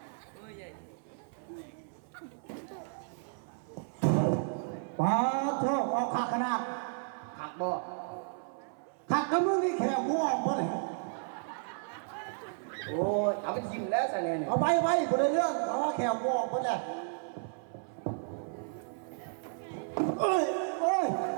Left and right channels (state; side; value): silent; left; 56 dB below the other